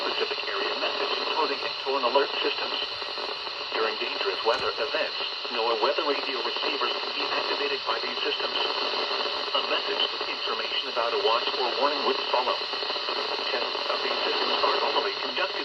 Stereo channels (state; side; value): identical; both; correlation 1.00